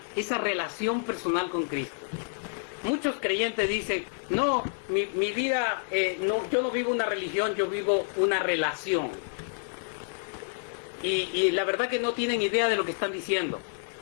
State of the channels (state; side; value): silent; right; digital silence